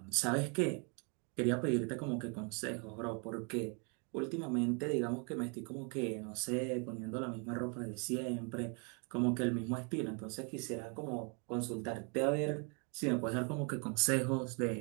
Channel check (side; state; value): left; quieter; 35.9 dB